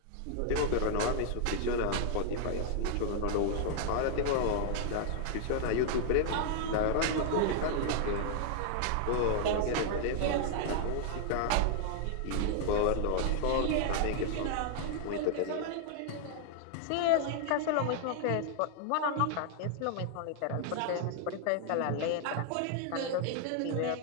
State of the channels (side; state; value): both; different; correlation -0.01